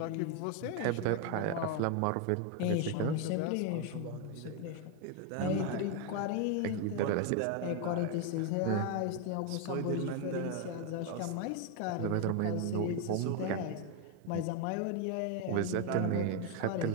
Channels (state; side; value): different; both; correlation 0.01